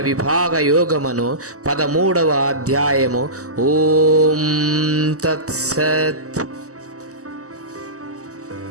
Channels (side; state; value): left; late; 0.66 ms